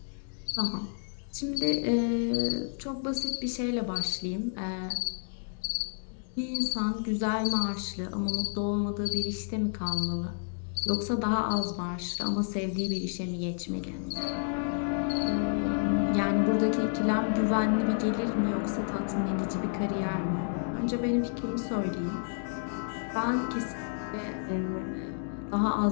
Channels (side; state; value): right; silent; digital silence